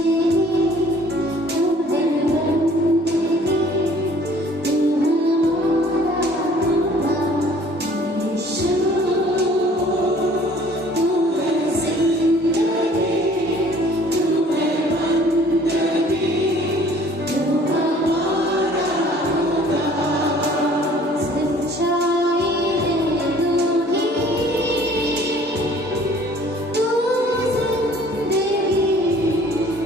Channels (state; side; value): normal; both; correlation 0.54